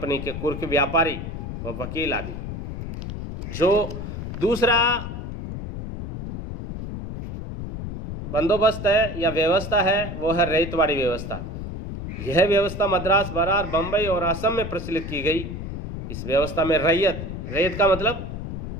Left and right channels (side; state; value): left; noise; rumble, 7 dB below the sound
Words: के कुर्क व्यापारी व वकील आदि। जो दूसरा बंदोबस्त है या व्यवस्था है वो है रैयतवाड़ी व्यवस्था। यह व्यवस्था मद्रास, बरार, बंबई और असम में प्रचलित की गई। इस व्यवस्था में रैयत का मतलब